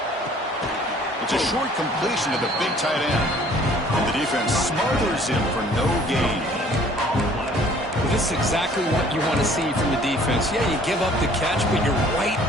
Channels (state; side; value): normal; both; correlation 0.55